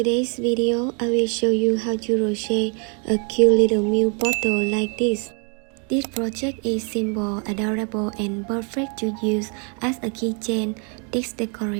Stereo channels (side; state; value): left; quieter; 38.1 dB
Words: video, I will show you how to crochet a cute little milk bottle like this. This project is simple, adorable and perfect to use as a keychain, text